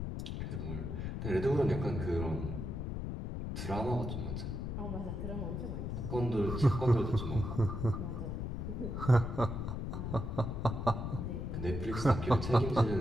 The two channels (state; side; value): noise; left; rumble, 4 dB below the sound